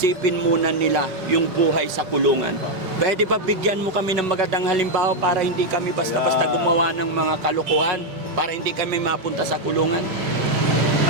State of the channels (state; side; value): late; left; 5.2 ms